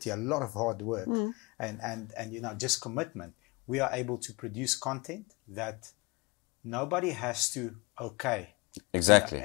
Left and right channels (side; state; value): right; quieter; 27.1 dB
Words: a lot of hard work, and just commitment, we are able to produce content that nobody has to okay. Exactly.